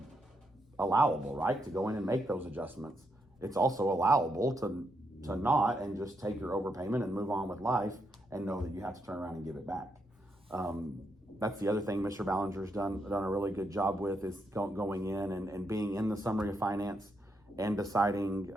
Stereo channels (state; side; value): normal; both; correlation 0.80